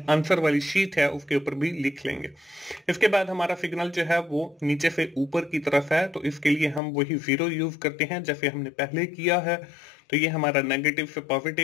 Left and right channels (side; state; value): right; drops out; at 6.8 s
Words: आंसर वाली शीट है उसके ऊपर भी लिख लेंगे। इसके बाद हमारा सिग्नल जो है वो नीचे से ऊपर की तरफ है, तो इसके लिए हम वही 0 यूज करते हैं जैसे हमने पहले किया है। तो ये हमारा नेगेटिव से